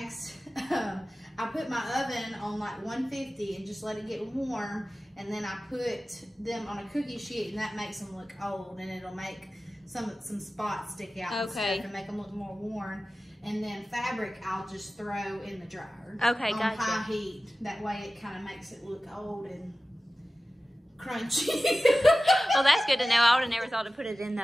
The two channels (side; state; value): both; normal; correlation 0.96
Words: I put my oven on like 150 and just let it get warm, and then I put them on a cookie sheet, and that makes them look old, and it'll make some spots stick out and stuff and make them look more worn. And then fabric I'll just throw in the dryer on high heat. That way it kind of makes it look old and crunchy. Well, that's good to know. I would have never thought to put it in